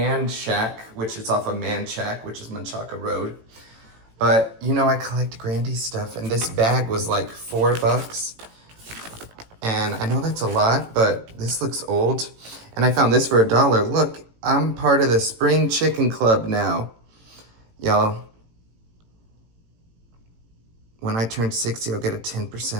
Shack, which is off of Man Shack, which is Menchaca Road. But, I collect Grandy's stuff, and this bag was like $4. And I know that's a lot, but this looks old. And I found this for $1. Look, I'm part of the Spring Chicken Club now. Y'all. When I turn 60, I'll get a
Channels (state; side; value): late; left; 18 ms